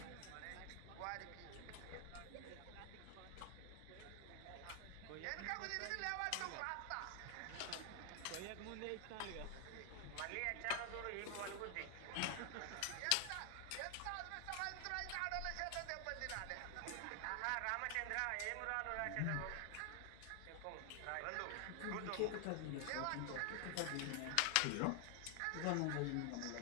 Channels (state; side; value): different; both; correlation 0.00